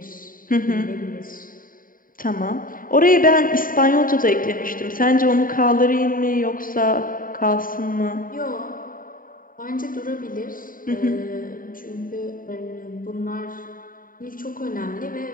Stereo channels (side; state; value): right; late; 0.41 ms